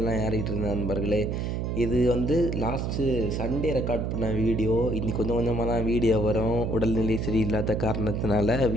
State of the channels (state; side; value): noise; right; hum, 1 dB below the sound